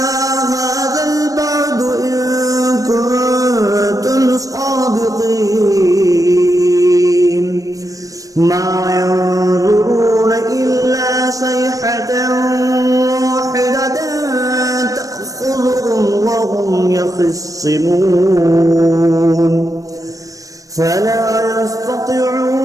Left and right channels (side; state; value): left; late; 0.16 ms